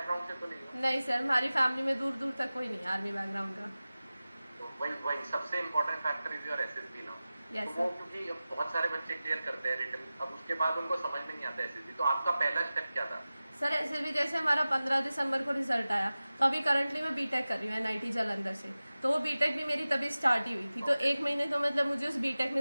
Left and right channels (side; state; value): both; inverted; correlation -0.96